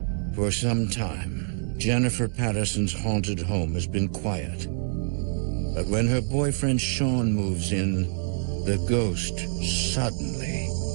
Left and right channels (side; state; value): left; silent; digital silence